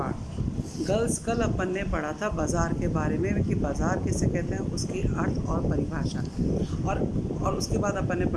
गर्ल्स, कल अपन ने पढ़ा था बाज़ार के बारे में कि बाज़ार किसे कहते हैं, उसकी अर्थ और परिभाषा। और उसके बाद अपन ने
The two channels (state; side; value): identical; both; correlation 1.00